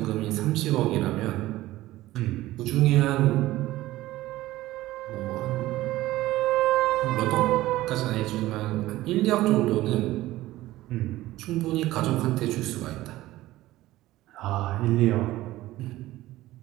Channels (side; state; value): left; quieter; 16.5 dB